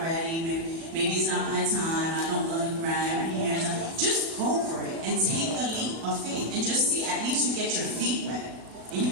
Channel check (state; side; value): late; left; 37 ms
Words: maybe it's not my time, I don't look right, my hair's not. Just go for it and take the leap of faith and just see, at least you get your feet wet and